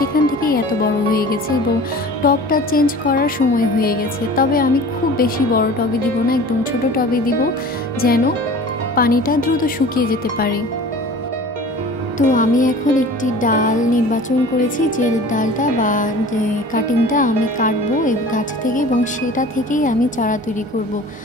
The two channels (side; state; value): both; normal; correlation 0.41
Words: থেকেই এত বড় হয়ে গেছে এবং টবটা চেঞ্জ করার সময় হয়ে গেছে। তবে আমি খুব বেশি বড় টবে দিব না, একদম ছোট টবে দিব যেন পানিটা দ্রুত শুকিয়ে যেতে পারে। তো আমি এখন একটি ডাল নির্বাচন করেছি, যে ডালটা বা যে কাটিংটা আমি কাটবো এই গাছ থেকে এবং সেটা থেকেই আমি চারা তৈরি করব।